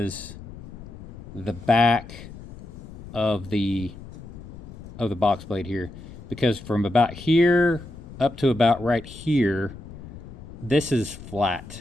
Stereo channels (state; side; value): noise; left; rumble, 15 dB below the sound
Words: the back of the box blade here, because from about here up to about right here, this is